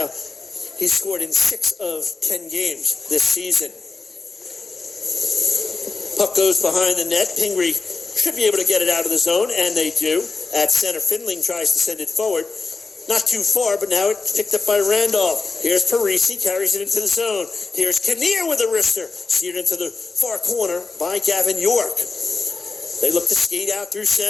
he's scored in 6 of 10 games this season. Puck goes behind the net. Pingry should be able to get it out of the zone, and they do. At center, Findling tries to send it forward. Not too far, but now it's picked up by Randolph. Here's Parisi, carries it into the zone. Here's Kinnear with a wrister, steered into the far corner by Gavin York. They look to skate out through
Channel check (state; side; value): quieter; right; 4.0 dB